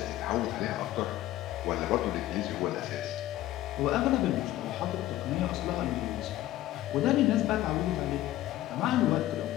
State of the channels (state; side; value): quieter; right; 14.8 dB